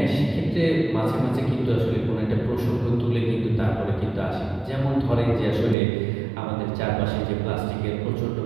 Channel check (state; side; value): drops out; left; at 5.8 s